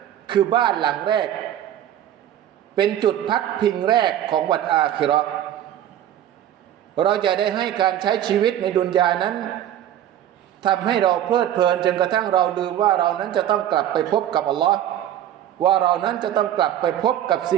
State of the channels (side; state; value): left; quieter; 11.3 dB